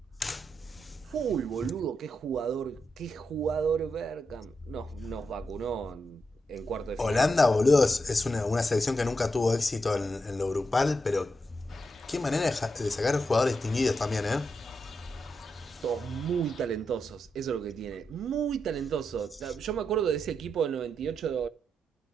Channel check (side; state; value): both; normal; correlation 0.85